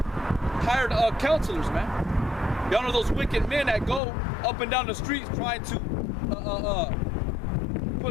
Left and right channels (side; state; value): right; drops out; at 4.0 s